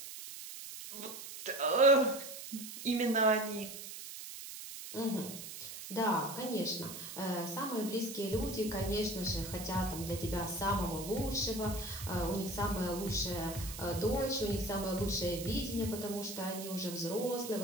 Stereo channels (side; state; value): right; noise; hiss, 10 dB below the sound